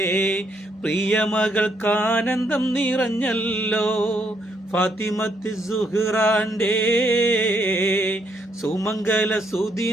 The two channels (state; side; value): normal; both; correlation 0.74